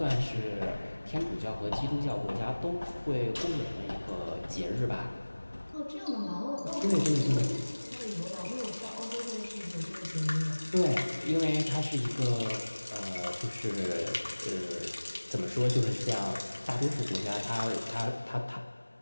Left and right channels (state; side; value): inverted; both; correlation -1.00